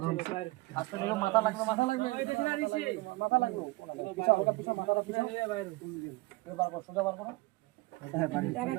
আজকে দেখো মাথা লাগবে মাথা লাগবে মাথা লাগবে পিছা ওটা পিছা মাথাটা পিছা বাইরে তুমি বার করো সোজা বার করো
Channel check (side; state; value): left; quieter; 22.1 dB